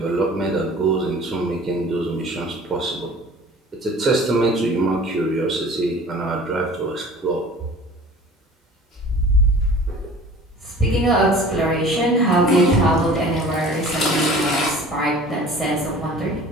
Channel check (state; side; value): normal; both; correlation 0.44